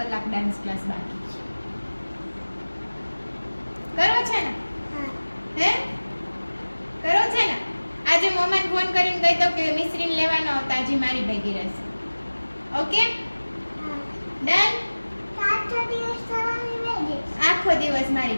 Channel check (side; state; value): both; inverted; correlation -1.00